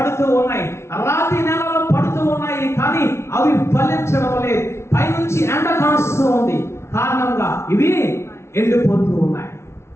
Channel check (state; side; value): late; right; 0.13 ms